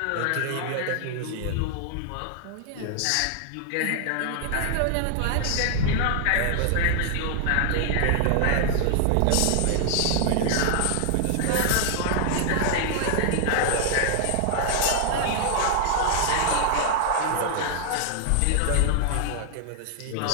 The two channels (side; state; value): both; different; correlation -0.01